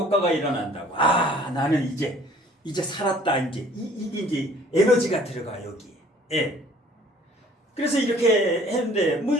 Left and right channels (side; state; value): both; normal; correlation 0.54